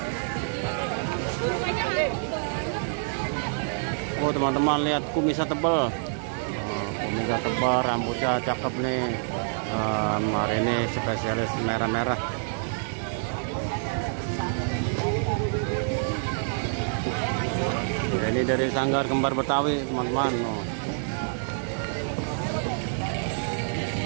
Oh teman-teman, lihat kumisnya tebal. Kumisnya tebal, rambutnya cakep nih. Hari ini spesialis merah-merah. Ini dari Sanggar Kembar Betawi teman-teman.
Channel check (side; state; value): left; silent; 60 dB below the other